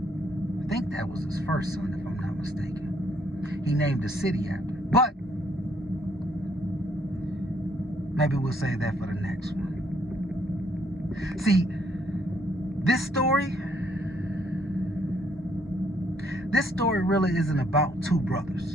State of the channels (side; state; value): both; normal; correlation 0.69